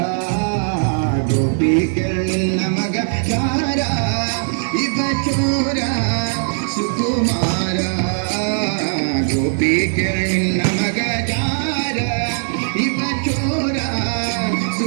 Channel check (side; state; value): left; silent; digital silence